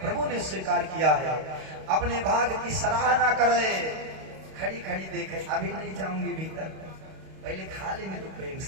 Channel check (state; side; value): late; left; 31 ms